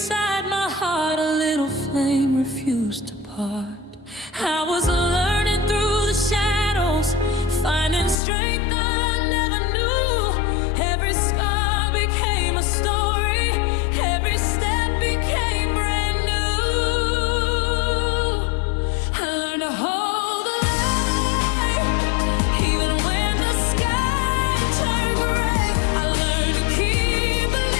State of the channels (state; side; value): drops out; right; at 8.2 s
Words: my heart, a little flame refused to part. I was learning through the shadows, finding strength I never knew. Every scar became a story, every step became brand new. I learned to hold the light, even when the sky turned gray. I learned to keep